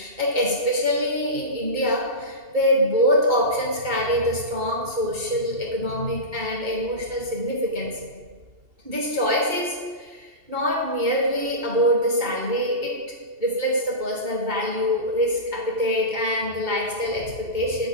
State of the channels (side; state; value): left; late; 2.7 ms